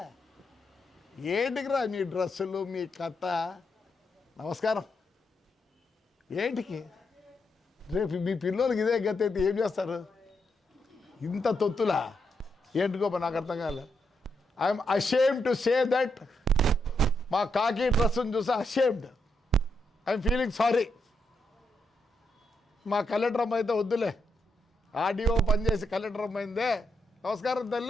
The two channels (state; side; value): normal; both; correlation 0.81